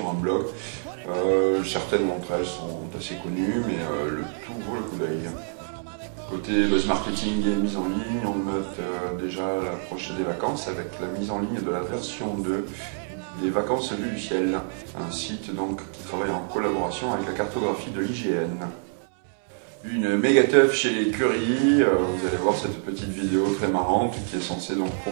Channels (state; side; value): silent; left; 61 dB below the other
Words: un blog. Certaines d'entre elles sont assez connues, mais le tout vaut le coup d'œil. Côté buzz marketing et mise en ligne, on note déjà l'approche des vacances avec la mise en ligne de la version 2 des Vacances vues du ciel, un site donc qui travaille en collaboration avec la cartographie de l'IGN. Une méga teuf chez Curie, vous allez voir cette petite vidéo très marrante qui est censée donc